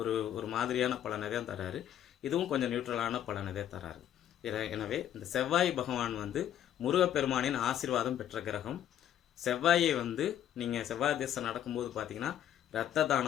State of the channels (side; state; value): right; quieter; 10.7 dB